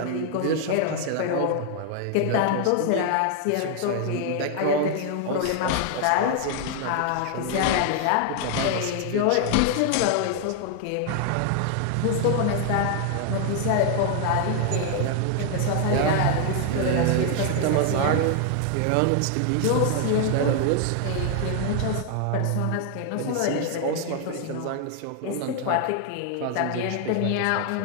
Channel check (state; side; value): different; both; correlation 0.00